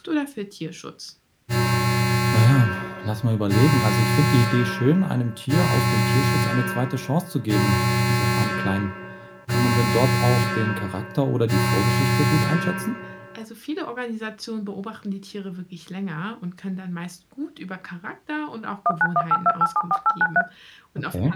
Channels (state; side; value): identical; both; correlation 1.00